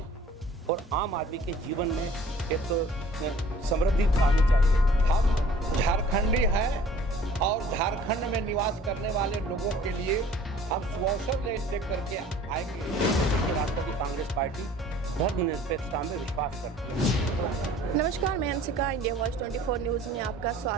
और आम आदमी के जीवन में एक समृद्धि आनी चाहिए। हम झारखंडी हैं और झारखंड में निवास करने वाले लोगों के लिए हम सुअवसर ले करके आएंगे। राष्ट्रवादी कांग्रेस पार्टी धर्मनिरपेक्षता में विश्वास करती है। नमस्कार, मैं हंसिका, इंडिया वॉइस 24 न्यूज़ में आपका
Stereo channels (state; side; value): normal; both; correlation 0.51